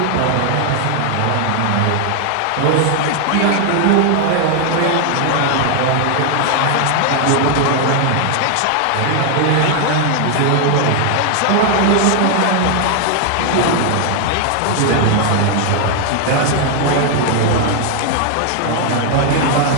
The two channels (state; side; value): different; both; correlation 0.00